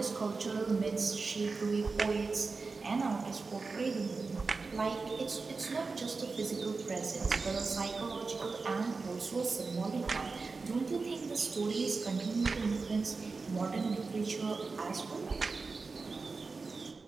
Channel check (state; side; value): quieter; left; 4.2 dB